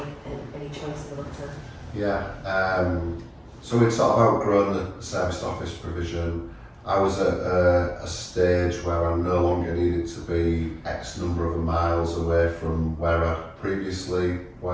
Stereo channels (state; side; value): identical; both; correlation 1.00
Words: choice in the matter. Yeah. So we'd sort of outgrown the serviced office provision. I was at a stage where I no longer needed to be X number of miles away from where I previously